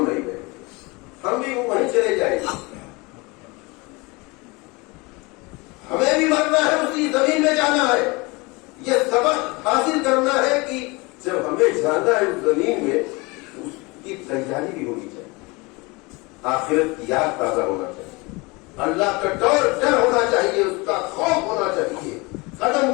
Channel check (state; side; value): quieter; right; 25.8 dB